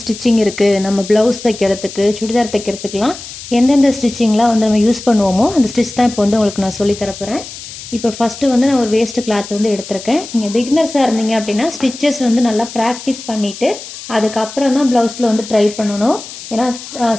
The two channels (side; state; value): left; noise; hiss, 13 dB below the sound